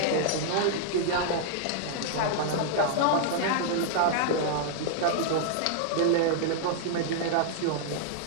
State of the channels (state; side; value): different; both; correlation -0.01